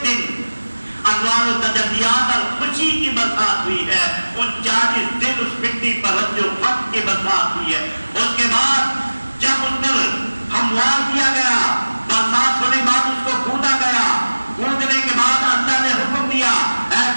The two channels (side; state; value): both; inverted; correlation -1.00